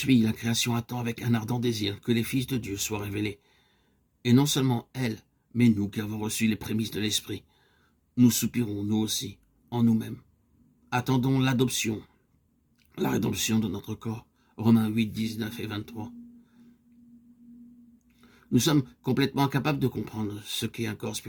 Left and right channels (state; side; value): identical; both; correlation 1.00